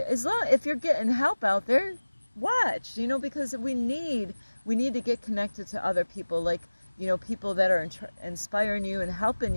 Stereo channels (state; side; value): inverted; both; correlation -1.00